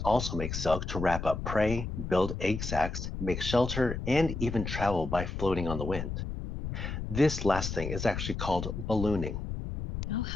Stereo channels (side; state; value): left; noise; rumble, 5 dB below the sound